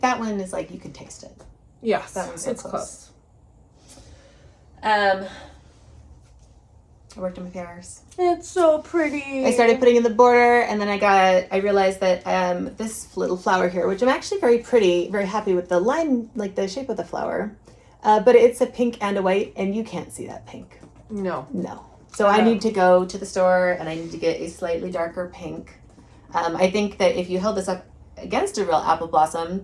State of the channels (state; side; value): identical; both; correlation 1.00